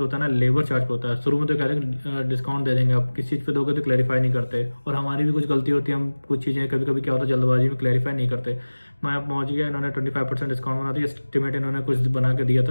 होता है ना, लेबर चार्ज होता है। शुरू में तो कहते हैं डिस्काउंट दे देंगे, आप किस चीज़ पे दोगे तो क्लैरिफाई नहीं करते, और हमारी भी कुछ गलती होती है, हम कुछ चीज़ें कभी कभी क्या होता है जल्दबाजी में क्लैरिफाई नहीं करते। मैं अब पहुँच गया, इन्होंने 25% डिस्काउंट बना दिया। एस्टिमेट इन्होंने कुछ बना के दिया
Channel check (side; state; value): both; inverted; correlation -1.00